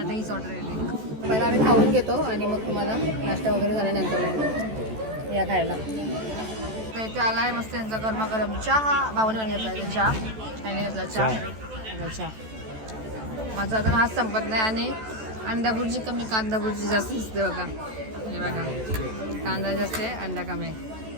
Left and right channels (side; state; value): left; late; 14 ms